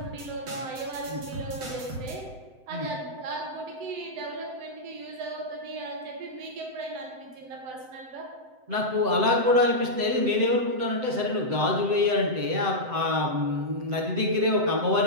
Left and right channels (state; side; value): late; left; 7.8 ms